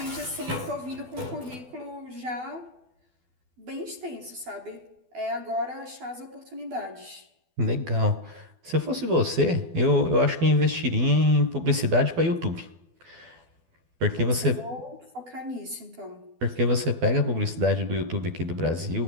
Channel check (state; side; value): late; left; 12 ms